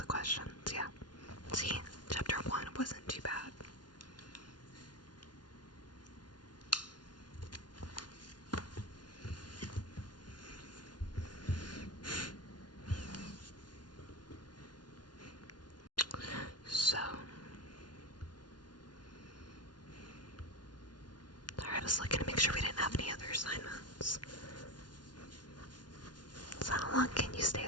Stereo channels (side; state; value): right; late; 0.70 ms